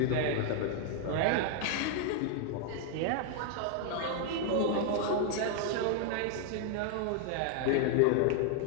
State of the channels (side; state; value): both; different; correlation 0.00